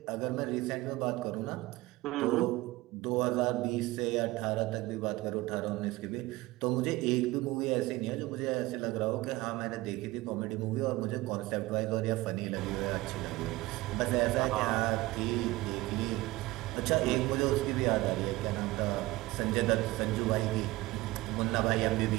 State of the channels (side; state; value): left; quieter; 19.6 dB